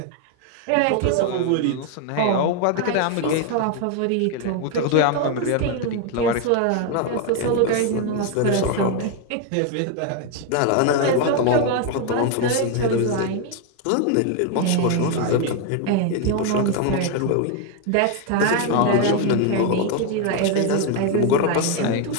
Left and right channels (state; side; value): different; both; correlation 0.01